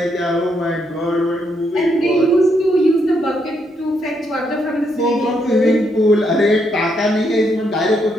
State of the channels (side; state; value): both; normal; correlation 0.77